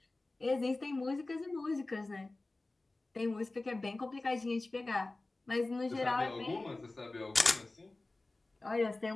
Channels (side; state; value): right; quieter; 3.1 dB